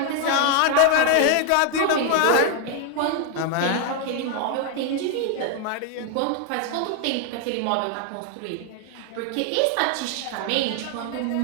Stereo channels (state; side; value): different; both; correlation 0.00